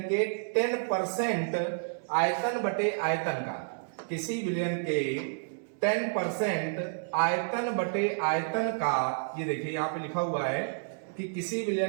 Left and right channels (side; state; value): left; silent; digital silence